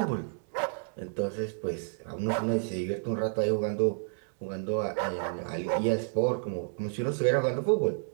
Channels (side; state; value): left; silent; digital silence